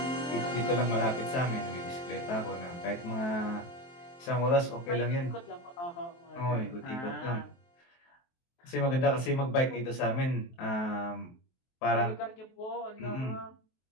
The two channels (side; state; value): right; late; 23 ms